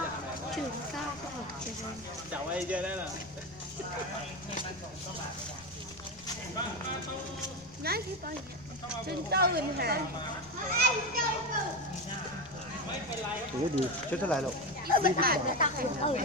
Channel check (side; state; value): left; noise; rumble, 22 dB below the sound